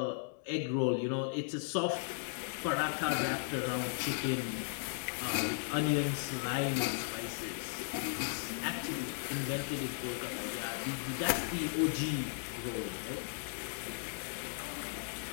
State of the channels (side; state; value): right; silent; digital silence